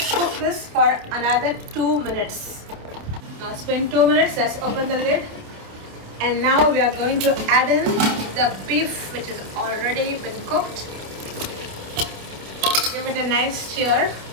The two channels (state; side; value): late; left; 28 ms